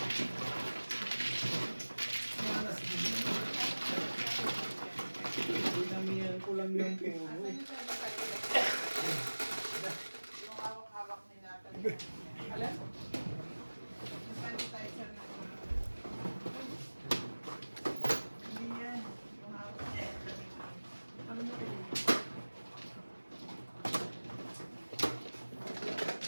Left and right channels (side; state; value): both; inverted; correlation -1.00